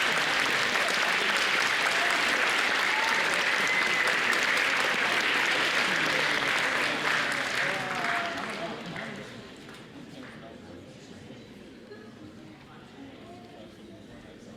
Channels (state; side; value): identical; both; correlation 1.00